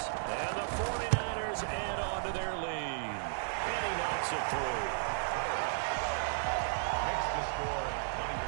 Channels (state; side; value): silent; left; digital silence